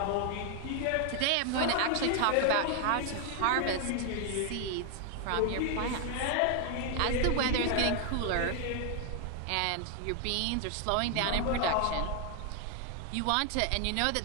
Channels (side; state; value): both; different; correlation 0.00